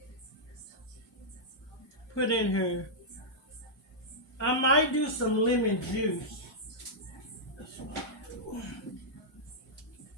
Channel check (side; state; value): both; normal; correlation -0.10